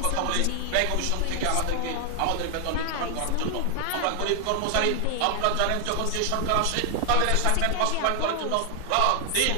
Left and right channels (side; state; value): both; different; correlation 0.00